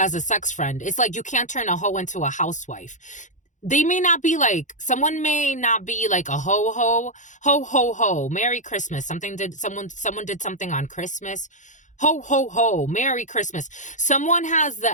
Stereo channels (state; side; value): late; right; 0.36 ms